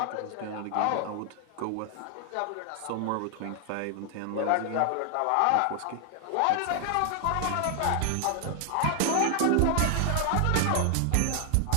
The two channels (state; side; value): different; both; correlation 0.00